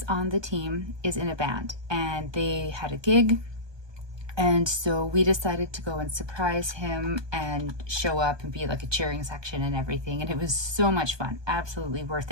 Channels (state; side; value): late; left; 1.2 ms